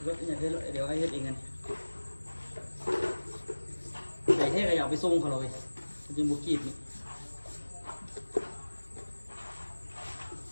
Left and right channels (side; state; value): both; inverted; correlation -1.00